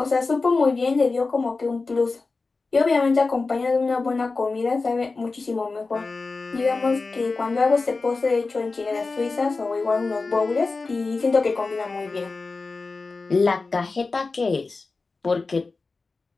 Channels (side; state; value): right; quieter; 3.9 dB